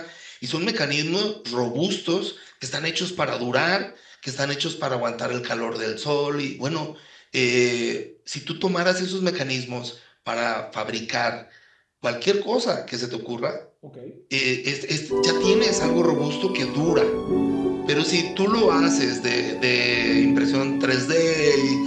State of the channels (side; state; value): both; identical; correlation 1.00